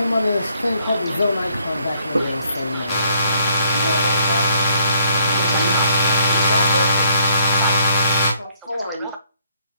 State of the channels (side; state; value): both; inverted; correlation -0.67